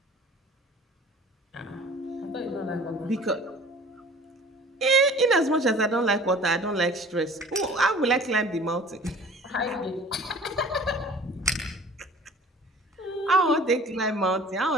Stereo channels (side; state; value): both; normal; correlation 0.46